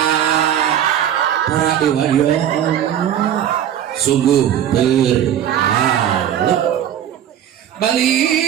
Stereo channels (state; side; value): quieter; left; 10.3 dB